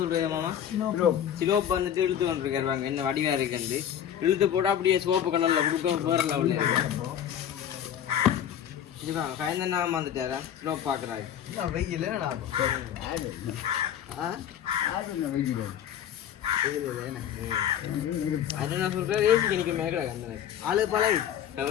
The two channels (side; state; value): right; quieter; 9.9 dB